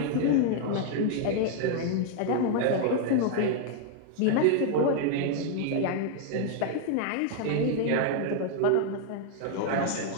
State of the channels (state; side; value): different; both; correlation 0.00